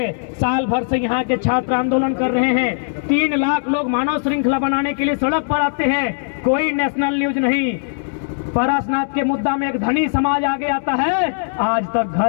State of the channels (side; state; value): right; silent; digital silence